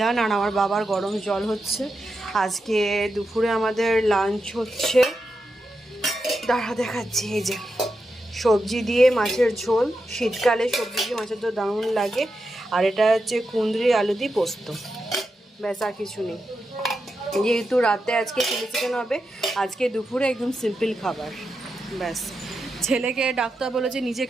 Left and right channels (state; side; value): normal; both; correlation 0.88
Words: আর আমার বাবার গরম জল হচ্ছে। আজকে দুপুরে আমাদের লাঞ্চ হচ্ছে, দাঁড়া দেখাচ্ছি, এই যে সবজি দিয়ে মাছের ঝোল, শীতকালে সবজি দিয়ে মাছের ঝোল দারুণ লাগে। আর এটা হচ্ছে কুঁদরি আলু দিয়ে পোস্ত, ব্যাস আর কিছু নেই। যেহেতু রাতে আজকে চিলি চিকেন হবে, আজকে দুপুরে একদম সিম্পল খাবার, ব্যাস। ছেলেকে ডাক্তার বলেছে নিজে